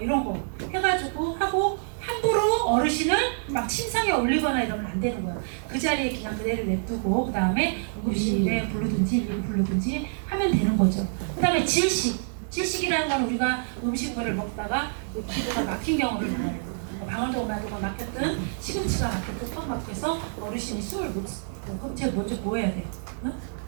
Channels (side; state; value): left; silent; 60 dB below the other